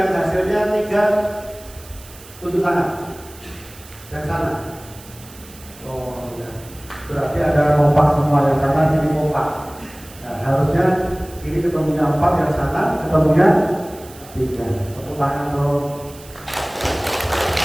hasilnya 3 tutup tangan. Yang sana. Oh ya. Berarti ada kompak semua yang sana sini kompak. Nah, harusnya ini ketemunya 4 yang sana ketemunya 3. Tepuk tangan dong.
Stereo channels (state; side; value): noise; right; hiss, 20 dB below the sound